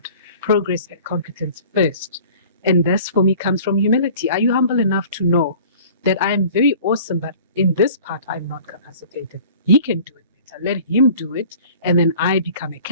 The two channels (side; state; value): both; inverted; correlation -0.46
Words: progress and competence first. And this, for me, comes from humility. Are you humble enough to know that I am very awesome, but in this part, I'm not capacitated? He can do it better. Let him do it. And then I become a